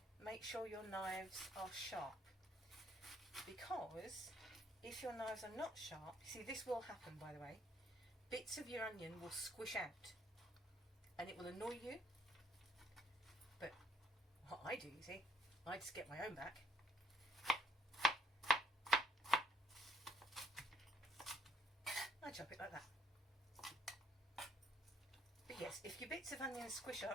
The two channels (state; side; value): normal; both; correlation 0.67